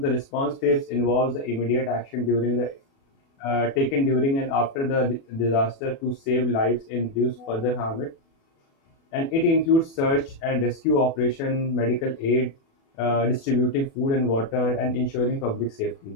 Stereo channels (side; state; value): right; late; 36 ms